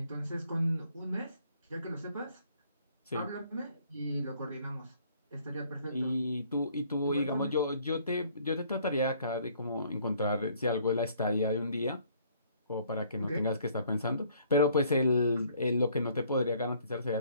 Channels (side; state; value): both; inverted; correlation -0.61